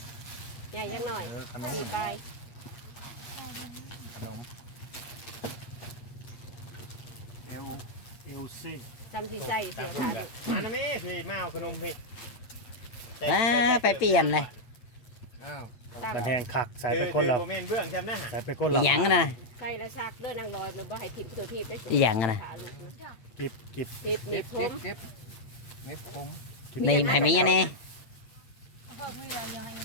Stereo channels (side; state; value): right; late; 8.9 ms